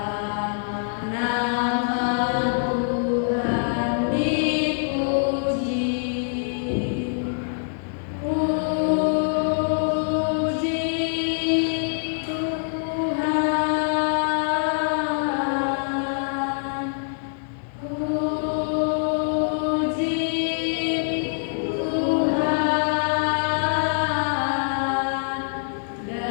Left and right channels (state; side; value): silent; right; 62 dB below the other